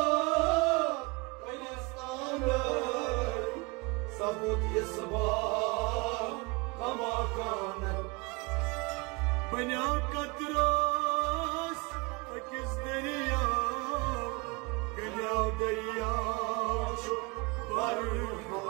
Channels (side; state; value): left; quieter; 27.7 dB